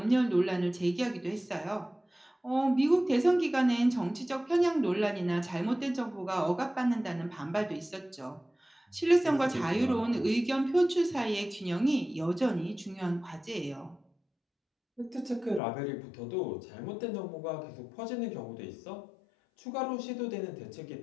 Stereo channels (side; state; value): right; drops out; at 15.6 s